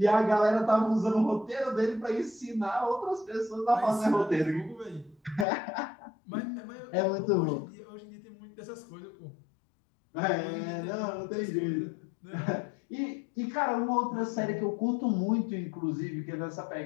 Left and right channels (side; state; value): right; drops out; at 5.5 s